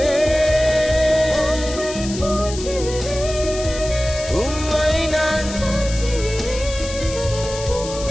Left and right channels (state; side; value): noise; left; hiss, 11 dB below the sound